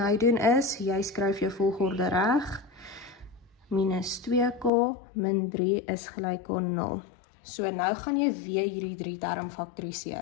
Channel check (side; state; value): right; drops out; at 4.7 s